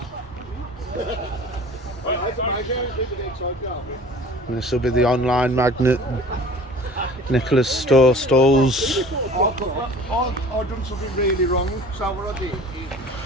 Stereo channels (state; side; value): normal; both; correlation 0.45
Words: And this will be the online magnet. Nicholas store stalls. I've done something really wrong, so what I did is...